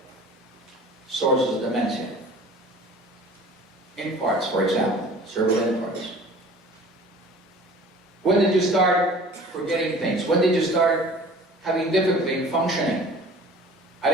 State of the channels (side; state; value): both; normal; correlation 0.45